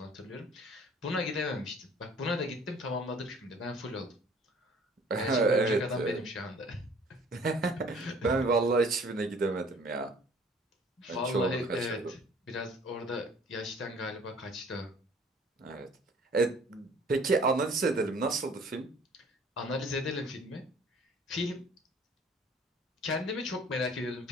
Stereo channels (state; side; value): normal; both; correlation 0.53